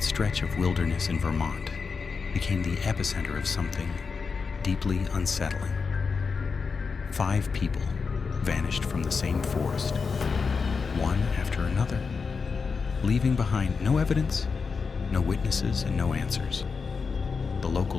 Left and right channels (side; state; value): right; quieter; 5.1 dB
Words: stretch of wilderness in Vermont, became the epicenter of something deeply unsettling. 5 people vanished from the same forest, one after another, leaving behind no evidence, no witnesses, and no answers. The